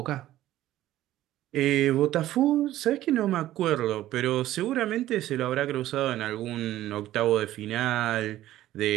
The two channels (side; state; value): left; quieter; 14.1 dB